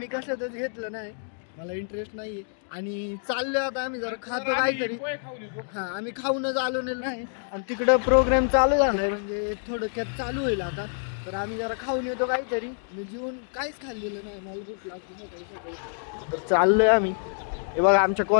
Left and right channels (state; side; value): silent; right; digital silence